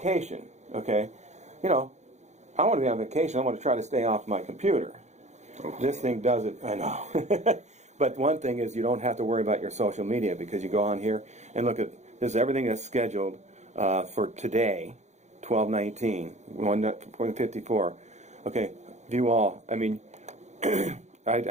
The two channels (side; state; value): left; late; 0.33 ms